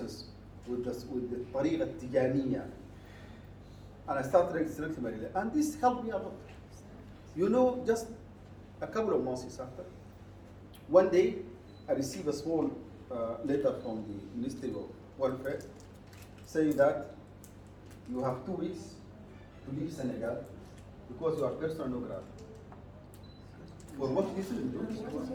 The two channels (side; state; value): both; identical; correlation 1.00